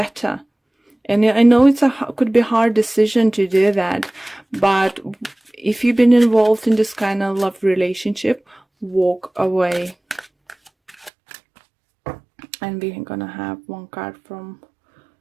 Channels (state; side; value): drops out; left; at 11.1 s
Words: And I know could be a hard decision to do that, but if you've been involved in this kind of love relationship, walk away. And we're gonna have one card from